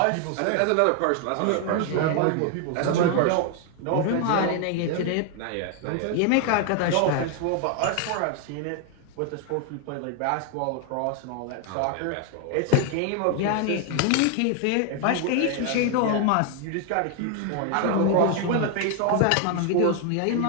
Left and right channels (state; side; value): different; both; correlation 0.01